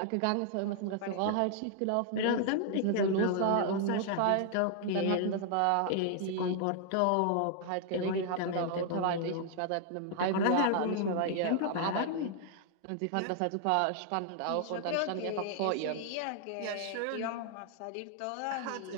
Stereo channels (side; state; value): both; different; correlation 0.00